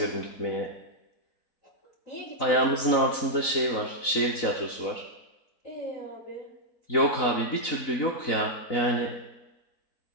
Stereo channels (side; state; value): right; late; 4.0 ms